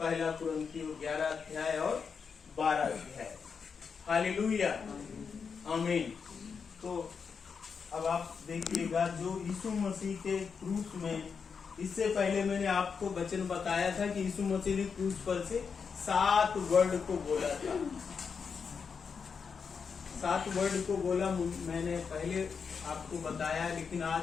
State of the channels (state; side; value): quieter; right; 5.9 dB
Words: कुरिन्थियों 11 अध्याय और 12 अध्याय। हालेलुया। आमीन। तो अब आप देखिएगा जो यीशु मसीह के क्रूस में, इससे पहले मैंने आपको वचन बताया था कि यीशु मसीह ने क्रूस पर से 7 वर्ड को बोला था। 7 वर्ड को बोला मैंने पहले आपको बताया, लेकिन